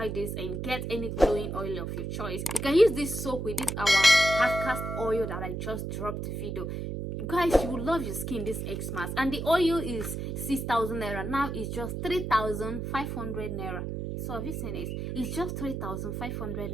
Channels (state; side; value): noise; right; hum, 4 dB below the sound